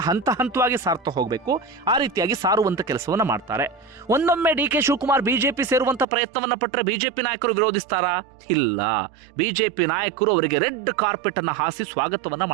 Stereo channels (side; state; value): left; drops out; at 6.1 s